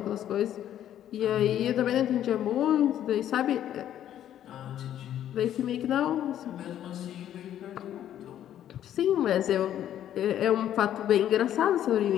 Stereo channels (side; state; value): right; quieter; 11.1 dB